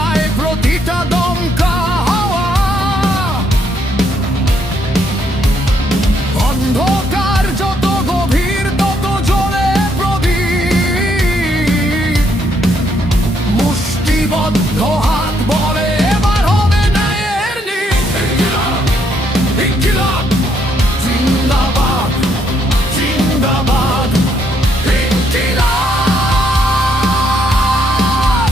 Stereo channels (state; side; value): normal; both; correlation 0.73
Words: প্রতিটা দমকা হাওয়া। অন্ধকার যত গভীর তত জ্বলে প্রদীপ, মুষ্টিবদ্ধ হাত বলে এবার হবে ন্যায়ের নীত। ইনকিলাব জিন্দাবাদ জিন্দাবাদ, ইনকিলাব